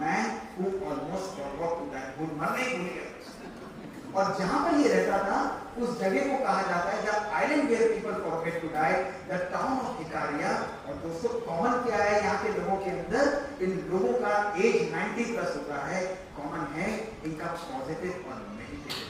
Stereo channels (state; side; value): identical; both; correlation 1.00